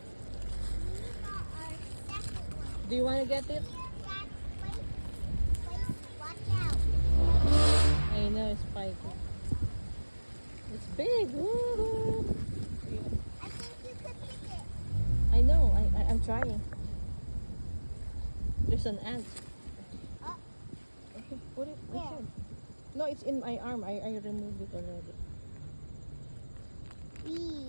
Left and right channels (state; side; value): inverted; both; correlation -1.00